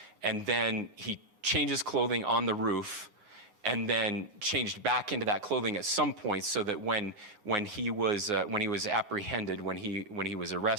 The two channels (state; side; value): late; left; 9.6 ms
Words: and then he changes clothing on the roof, and then changed back into that clothing at some point, so that when he was apprehended, when he was